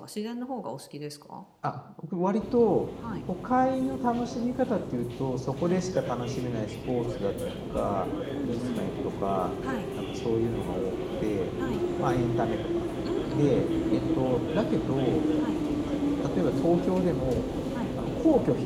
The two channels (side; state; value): both; identical; correlation 1.00